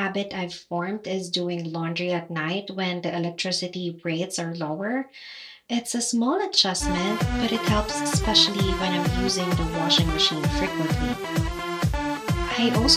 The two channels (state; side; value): identical; both; correlation 1.00